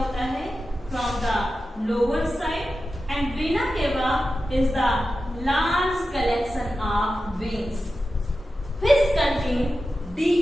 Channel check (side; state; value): both; normal; correlation 0.92